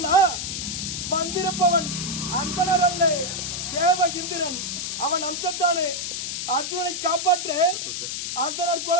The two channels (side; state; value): left; noise; hiss, 4 dB below the sound